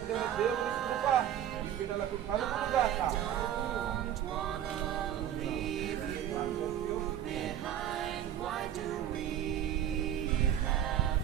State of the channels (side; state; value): left; quieter; 10.7 dB